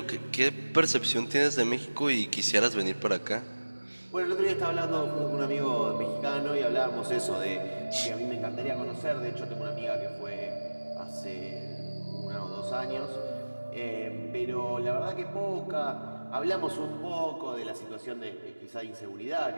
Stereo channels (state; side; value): inverted; both; correlation -1.00